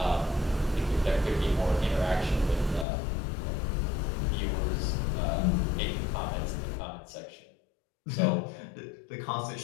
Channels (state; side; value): drops out; right; at 2.9 s